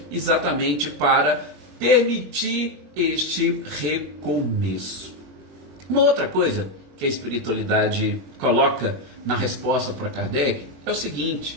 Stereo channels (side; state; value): left; late; 21 ms